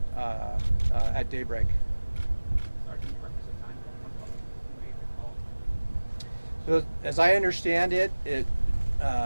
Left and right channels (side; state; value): both; inverted; correlation -1.00